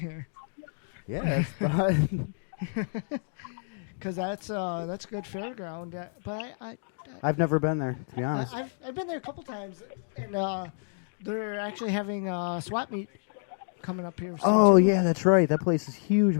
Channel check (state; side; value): silent; right; digital silence